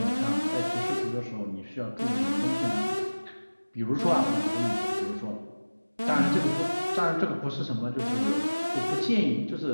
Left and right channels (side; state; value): both; inverted; correlation -1.00